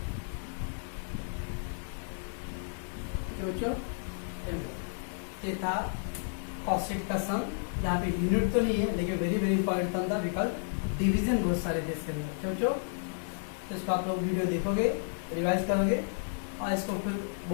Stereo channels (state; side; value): silent; right; digital silence